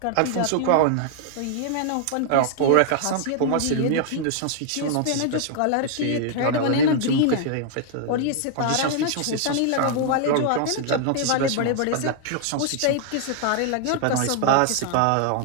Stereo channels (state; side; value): different; both; correlation 0.00